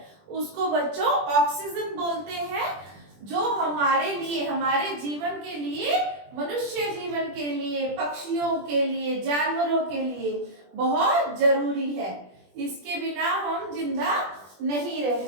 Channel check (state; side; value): late; left; 20 ms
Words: उसको बच्चों ऑक्सीजन बोलते हैं, जो हमारे लिए, हमारे जीवन के लिए, मनुष्य जीवन के लिए, पक्षियों के लिए, जानवरों के लिए बहुत जरूरी है। इसके बिना हम जिंदा नहीं रह